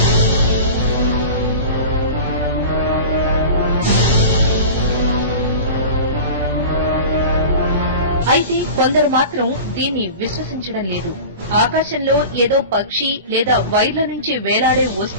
అయితే కొందరు మాత్రం దీన్ని విశ్వసించడం లేదు. ఆకాశంలో ఏదో పక్షి లేదా వైర్ల నుంచి వేలాడే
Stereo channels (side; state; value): both; inverted; correlation -0.35